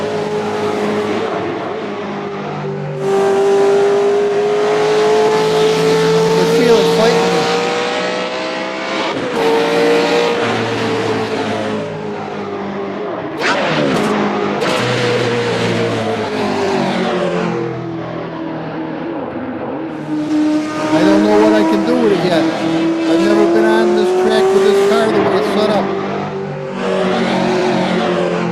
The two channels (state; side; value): identical; both; correlation 1.00